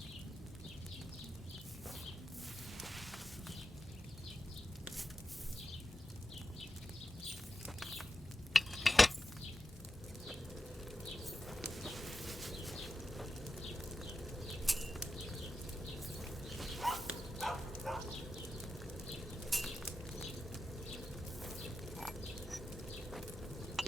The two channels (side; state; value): both; normal; correlation 0.90